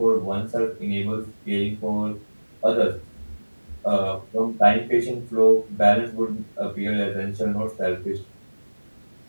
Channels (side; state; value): both; inverted; correlation -1.00